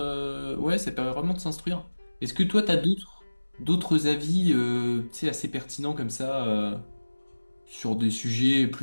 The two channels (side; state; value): both; inverted; correlation -1.00